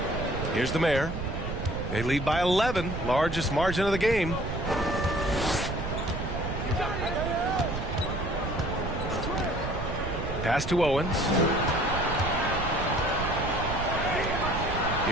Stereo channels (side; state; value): right; noise; rumble, 5 dB below the sound